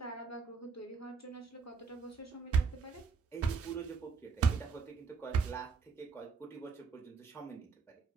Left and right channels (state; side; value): quieter; left; 5.2 dB